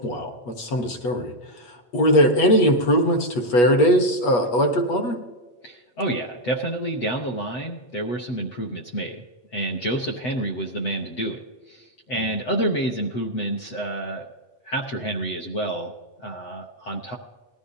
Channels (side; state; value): right; late; 8.3 ms